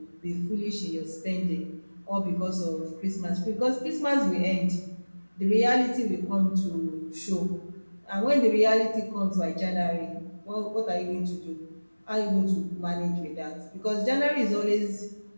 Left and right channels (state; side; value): inverted; both; correlation -1.00